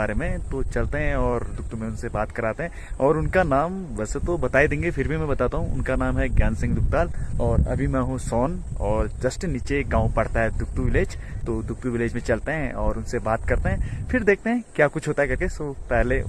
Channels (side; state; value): both; identical; correlation 1.00